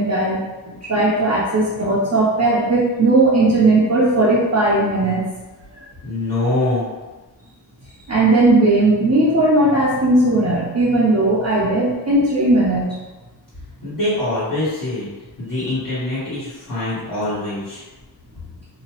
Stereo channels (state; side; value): normal; both; correlation 0.30